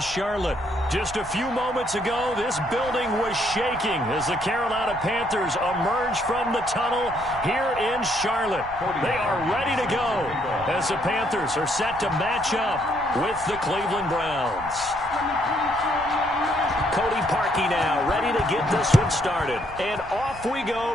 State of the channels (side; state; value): right; noise; rumble, 17 dB below the sound